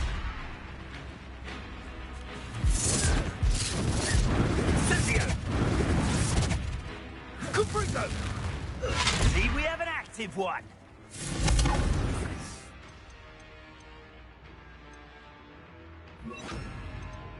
Incendio! Confringo! See, we have an active one.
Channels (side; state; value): both; identical; correlation 1.00